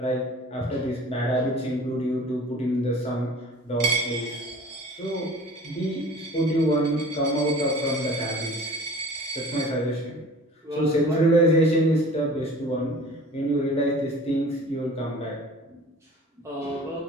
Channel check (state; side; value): normal; both; correlation 0.44